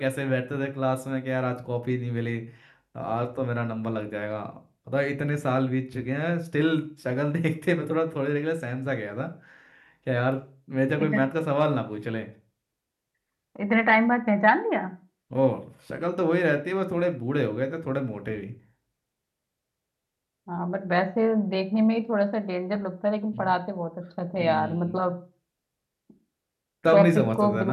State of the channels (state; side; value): identical; both; correlation 1.00